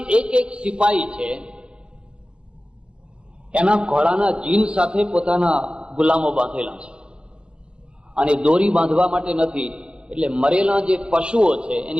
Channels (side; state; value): left; late; 0.055 ms